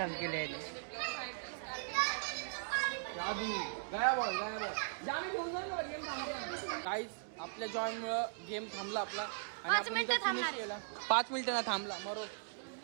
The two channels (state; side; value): silent; left; digital silence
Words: केले. काहीच आपल्या जॉयमुळं गेम थांबला आपला आणि 5 आपण मिनिटं इथं थांबणार. finish केला. 5 मिनिटं ना थांबला मरो.